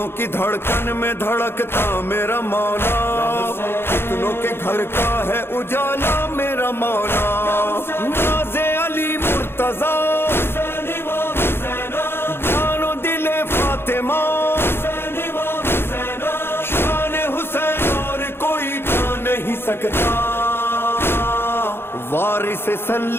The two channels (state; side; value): late; right; 0.11 ms